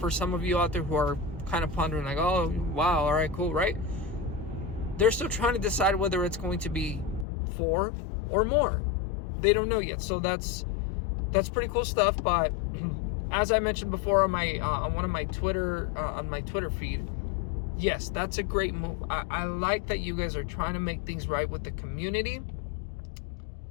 some of you out there who are kind of pondering like, oh wow, all right, cool, right? They're still trying to decide whether it's going to be 4 or more. They don't know yet. So that's pretty cool stuff. But as I mentioned before on my on my Twitter feed, yes, that's a great move. I like that you guys are trying to make things right with the community.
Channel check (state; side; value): drops out; right; at 7.2 s